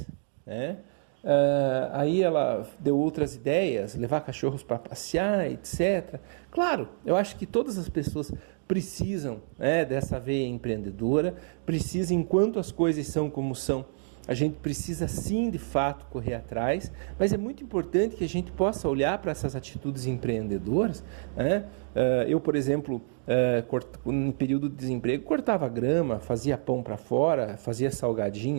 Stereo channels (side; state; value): left; silent; digital silence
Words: né? Aí ela deu outras ideias, levar cachorros para passear, etc. Claro, eu acho que todas as pessoas precisam, dessa veia empreendedora, precisam, enquanto as coisas são como são, a gente precisa sim, de fato, correr atrás, mas é muito importante que a gente possa olhar para essas atitudes empreendedoras, né? Eu, por exemplo, no período de desemprego, cortava grama, fazia pão para fora, fazia